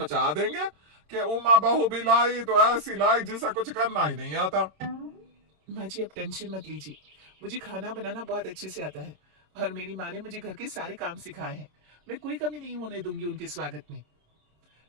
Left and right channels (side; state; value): left; late; 26 ms